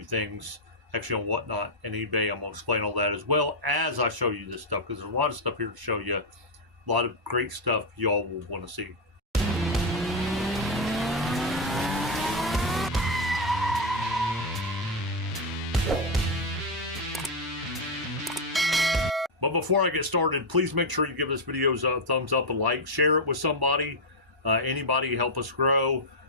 things actually on Whatnot and eBay. I'm going to explain all that as well as I show you this stuff, because there's a lot of stuff here to show you, a lot of great stuff y'all will want to see. But before I get started, please make sure you give this video a thumbs up, a like, share it with somebody, anybody, help us grow.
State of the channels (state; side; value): normal; both; correlation 0.02